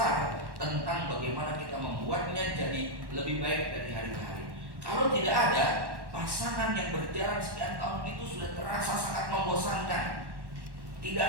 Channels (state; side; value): late; left; 1.1 ms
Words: tentang bagaimana kita membuatnya jadi lebih baik dari hari ke hari. Kalau tidak ada, pasangan yang berjalan sekian tahun itu sudah terasa sangat membosankan. Tidak